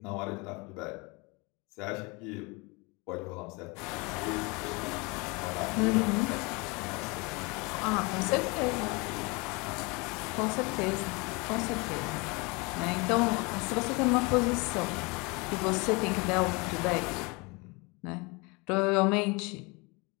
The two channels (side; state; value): right; quieter; 27.8 dB